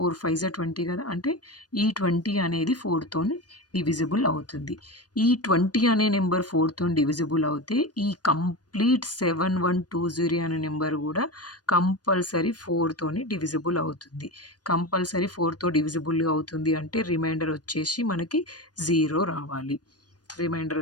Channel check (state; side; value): late; right; 0.69 ms